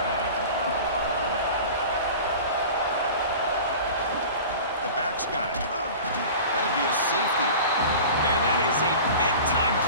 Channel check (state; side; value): inverted; both; correlation -0.37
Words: The back's got it. That'd be a safety. Man, that is a big-time